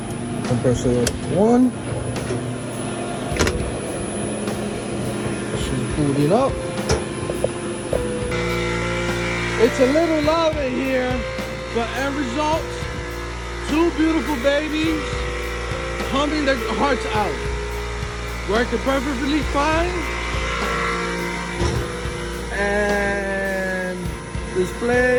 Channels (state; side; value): identical; both; correlation 1.00